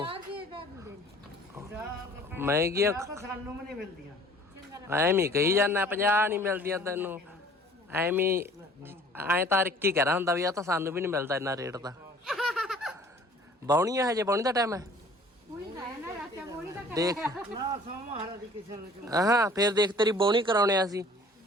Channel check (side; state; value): both; normal; correlation 0.51